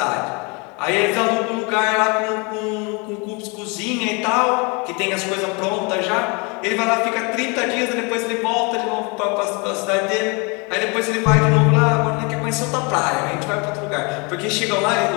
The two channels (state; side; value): quieter; right; 30.6 dB